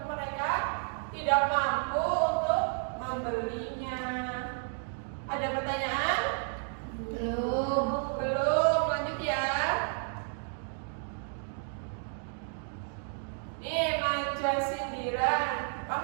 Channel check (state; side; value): silent; left; 57 dB below the other